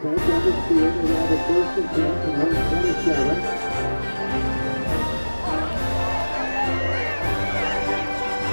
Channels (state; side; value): inverted; both; correlation -1.00